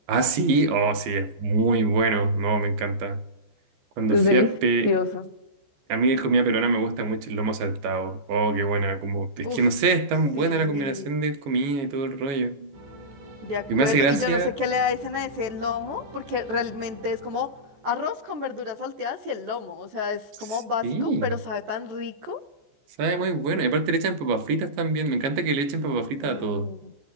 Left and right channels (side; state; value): left; late; 14 ms